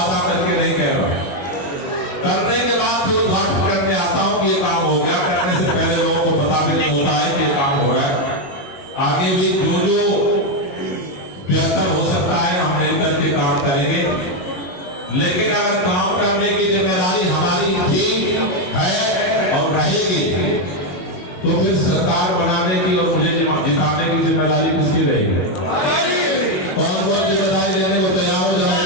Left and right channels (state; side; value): late; right; 22 ms